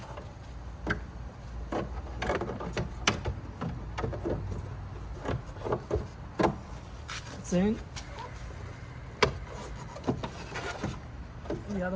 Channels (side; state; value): both; identical; correlation 1.00